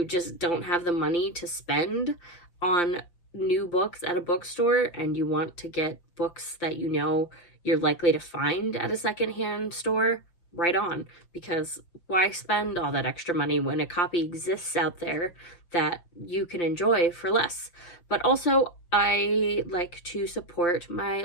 just don't have the money to spend on new books at a bookstore and you want to get books that you know you're likely to find at a secondhand store, right on, because why spend all that extra money when a copy exists out there that you can enjoy for less? But also, I like to support my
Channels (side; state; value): right; late; 5.8 ms